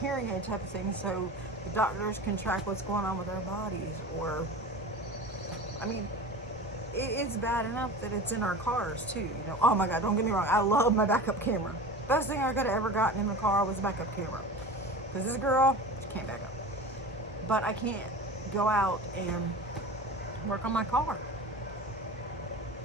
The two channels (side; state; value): both; normal; correlation 0.33